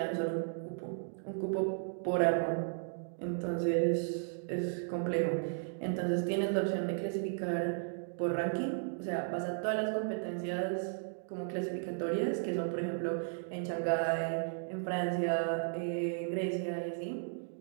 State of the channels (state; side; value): silent; left; digital silence